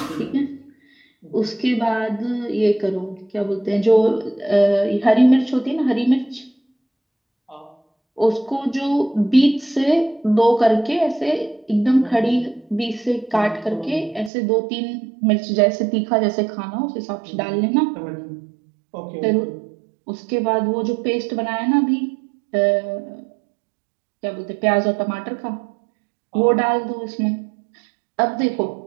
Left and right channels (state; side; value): drops out; left; at 14.3 s